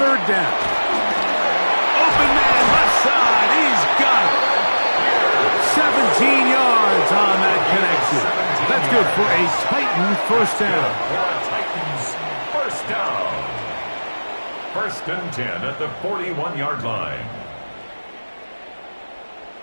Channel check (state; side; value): inverted; both; correlation -1.00